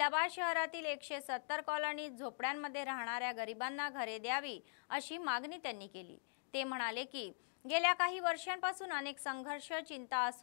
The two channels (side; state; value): right; silent; digital silence